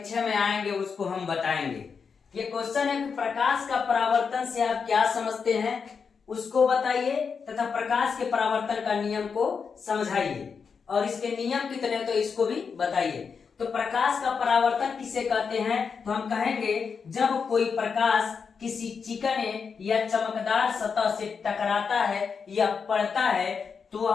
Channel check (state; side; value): quieter; right; 5.8 dB